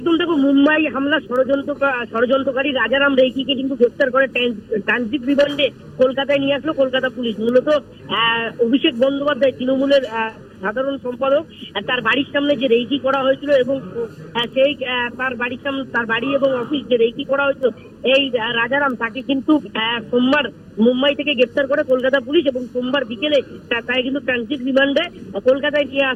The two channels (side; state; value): both; identical; correlation 1.00